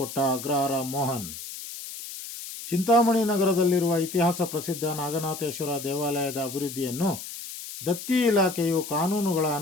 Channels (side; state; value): left; noise; hiss, 10 dB below the sound